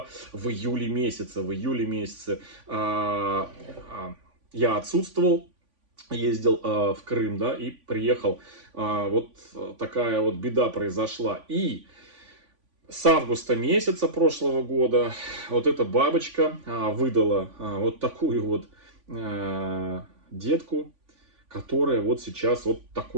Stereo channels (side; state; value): left; late; 3.5 ms